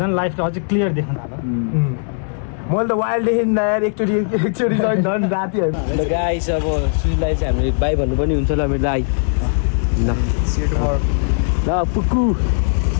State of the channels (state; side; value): silent; right; digital silence